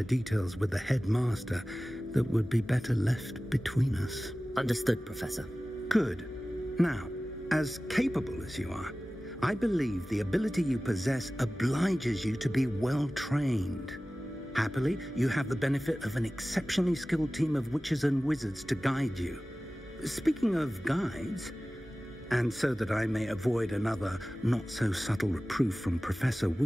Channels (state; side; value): normal; both; correlation 0.96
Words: details with the headmaster that would be better left between us. Understood, Professor. Good. Now, as capable as you are, I believe the ability you possess obliges you to be well trained. Happily, you have the benefit of an exceptionally skilled team of witches and wizards to guide you. Speaking of guides, and so that I may avoid another not-so-subtle reproof from Professor